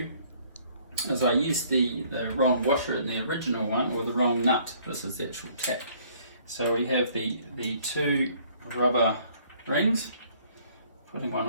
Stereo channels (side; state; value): both; inverted; correlation -0.60